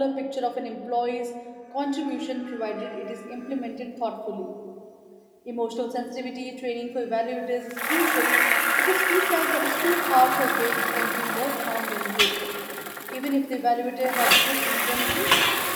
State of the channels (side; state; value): both; identical; correlation 1.00